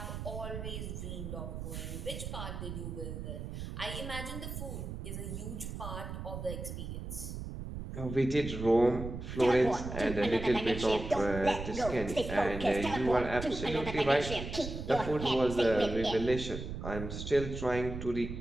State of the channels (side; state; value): right; noise; rumble, 7 dB below the sound